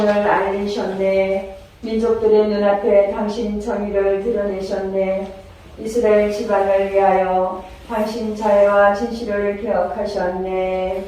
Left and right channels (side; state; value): both; identical; correlation 1.00